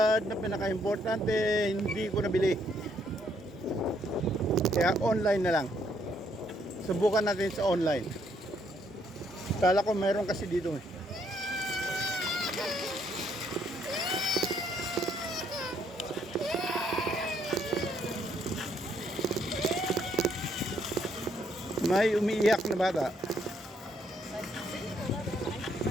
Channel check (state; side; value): normal; both; correlation 0.70